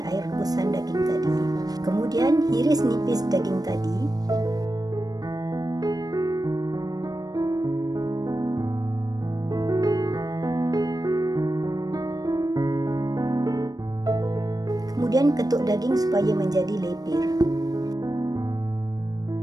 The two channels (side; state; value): left; late; 0.18 ms